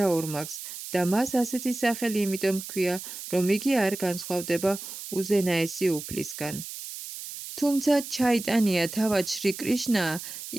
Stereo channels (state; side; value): noise; right; hiss, 10 dB below the sound